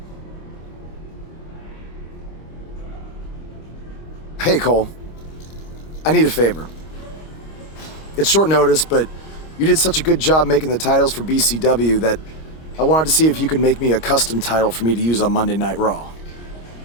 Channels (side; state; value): right; late; 25 ms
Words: Hey, Cole. I need a favor. It's short notice, but You did such a good job making the titles for BCW that I wanted to see if you could make me a custom title for me to use on Monday Night Raw.